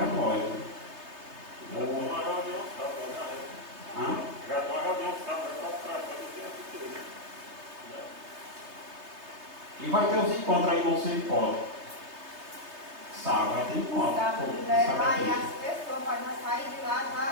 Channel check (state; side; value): late; left; 3.3 ms